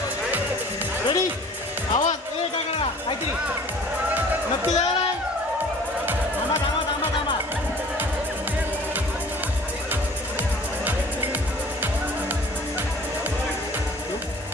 रेडी, आवाज काय करा काहीतरी नक्की द्या.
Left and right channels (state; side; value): normal; both; correlation 0.49